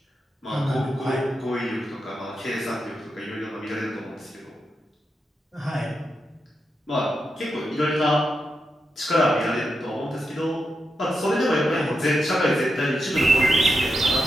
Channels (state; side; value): normal; both; correlation 0.87